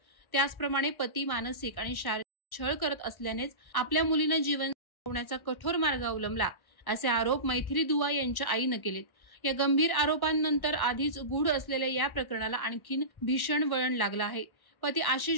त्याचप्रमाणे पती मानसिक आणि शारीरिक छळ करत असल्यानेच आपल्या मुलीनं जीवन संपवण्याचा कठोर मार्ग अवलंबला, असे आरोप मैथिली दुआ यांच्या आईनं केलेत। या गंभीर आरोपांनंतर आधीच गूढ असलेल्या या प्रकरणाला आणखीन भीषण वळण लागलं आहे। पती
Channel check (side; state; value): right; late; 1.1 ms